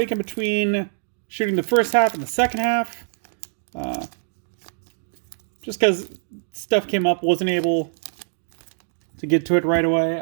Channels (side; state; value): left; silent; digital silence